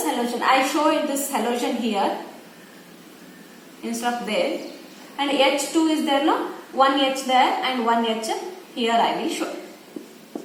halogen. I show it this halogen here instead of there, and H2 is there, no? One H there and one H here I will show.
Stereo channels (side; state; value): both; identical; correlation 1.00